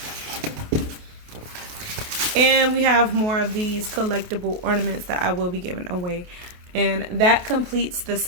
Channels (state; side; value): late; left; 28 ms